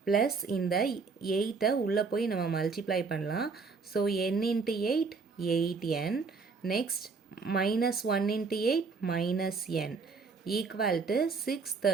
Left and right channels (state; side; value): quieter; left; 4.7 dB